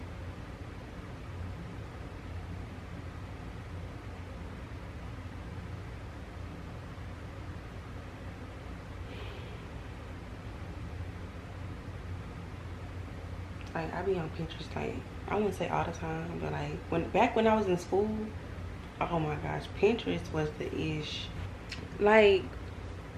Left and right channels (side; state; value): both; identical; correlation 1.00